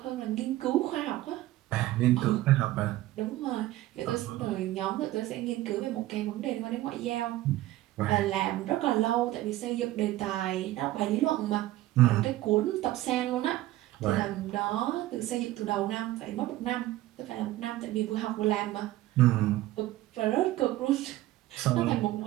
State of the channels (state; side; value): quieter; left; 15.9 dB